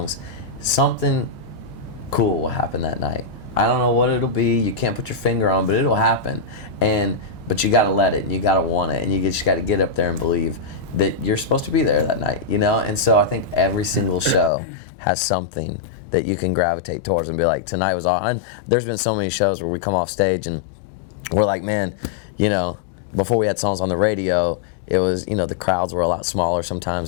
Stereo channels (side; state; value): right; drops out; at 14.5 s